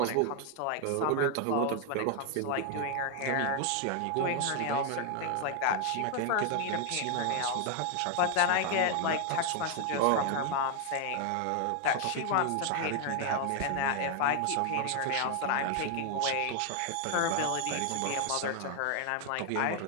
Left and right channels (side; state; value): both; different; correlation 0.00